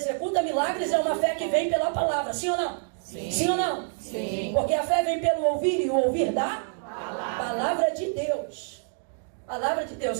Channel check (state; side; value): silent; left; digital silence